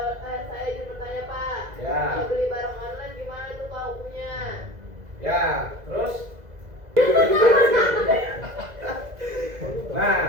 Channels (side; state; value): left; late; 2.0 ms